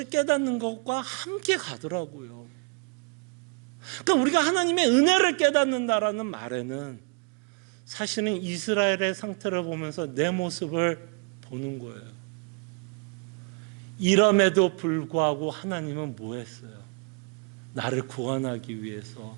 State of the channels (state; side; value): quieter; left; 34.1 dB